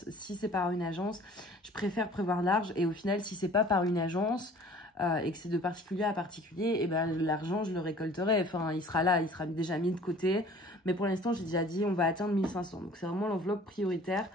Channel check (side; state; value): both; normal; correlation 0.49